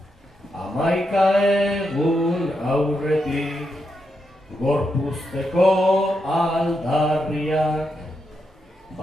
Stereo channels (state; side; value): normal; both; correlation 0.83